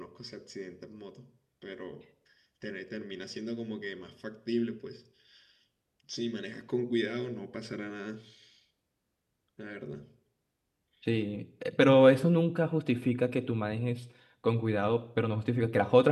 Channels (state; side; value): identical; both; correlation 1.00